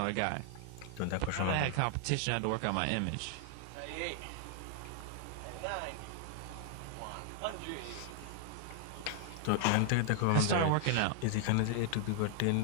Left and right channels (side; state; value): both; different; correlation 0.00